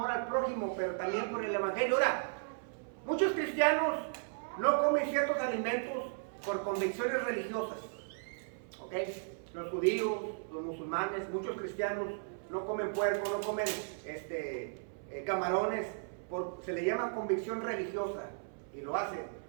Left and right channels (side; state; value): left; silent; 54 dB below the other